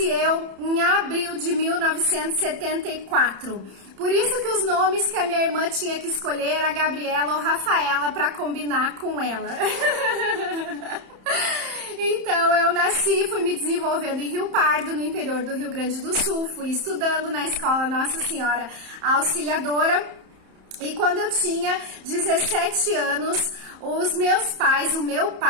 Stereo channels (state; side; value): late; left; 31 ms